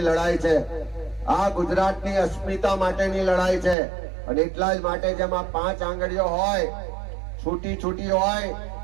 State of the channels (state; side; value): drops out; left; at 3.8 s